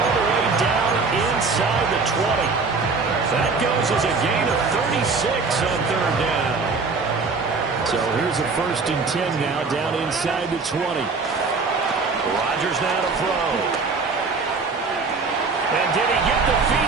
the way down inside the 20. That goes as a gain of 36 on 3rd down. So here's a 1st and 10 now down inside the 20. Rodgers now to throw. And did he get the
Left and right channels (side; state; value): left; quieter; 4.4 dB